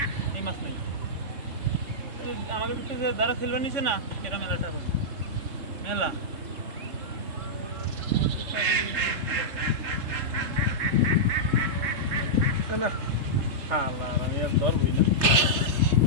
এই মাছ নেই আমাদের যে যারা ফেলবার নিছে না এটা মেলাটা মেলা আমি আর ধরবই না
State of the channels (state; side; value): late; left; 3.3 ms